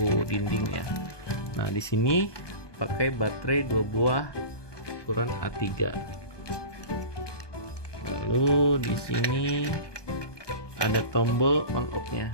dinding ya. Nah, di sini pakai baterai 2 buah ukuran A3. Lalu di sini ada tombol on off-nya.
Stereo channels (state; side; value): late; right; 1.2 ms